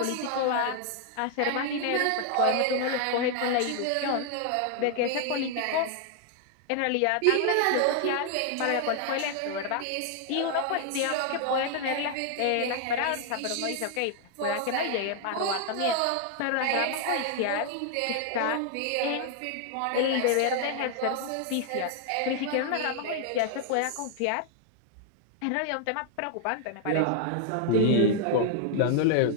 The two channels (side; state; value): both; different; correlation 0.00